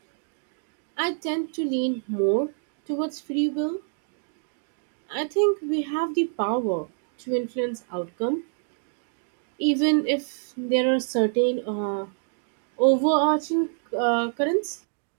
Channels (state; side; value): silent; left; digital silence